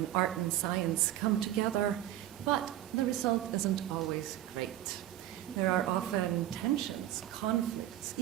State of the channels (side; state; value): left; quieter; 13.1 dB